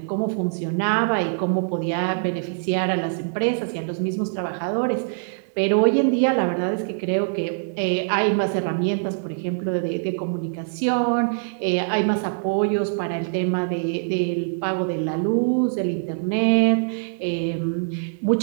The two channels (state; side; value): silent; left; 63 dB below the other